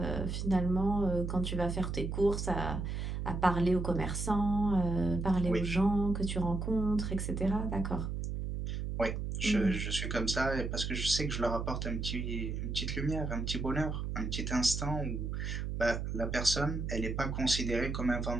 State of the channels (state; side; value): noise; right; hum, 3 dB below the sound